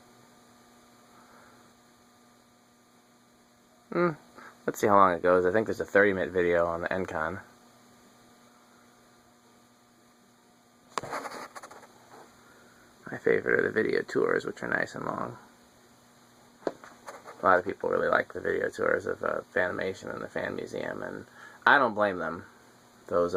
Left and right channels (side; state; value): both; identical; correlation 1.00